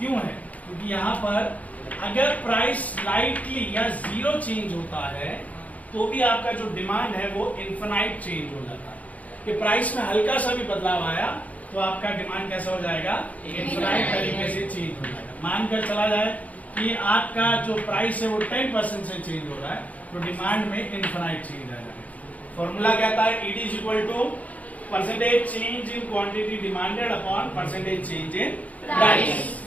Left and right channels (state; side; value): late; right; 0.071 ms